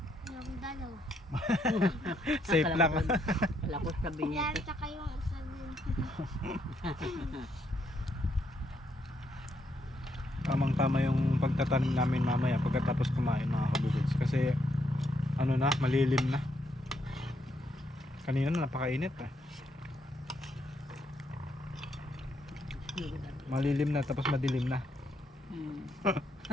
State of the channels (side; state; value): both; normal; correlation 0.76